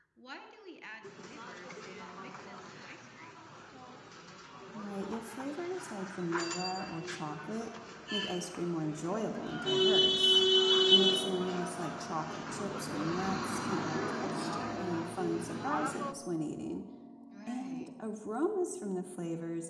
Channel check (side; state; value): both; identical; correlation 1.00